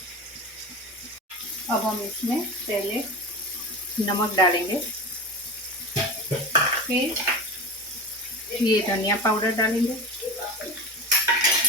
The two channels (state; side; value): normal; both; correlation 0.28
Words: अब हम इसमें पहले नमक डालेंगे, फिर ये धनिया पाउडर डालेंगे,